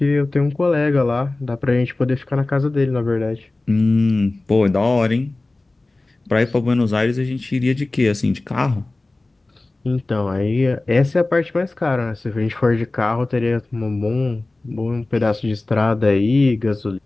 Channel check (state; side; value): quieter; right; 3.0 dB